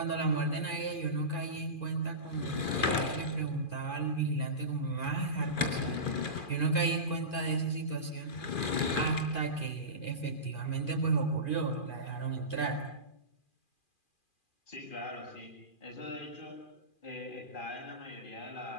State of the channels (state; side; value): late; right; 2.4 ms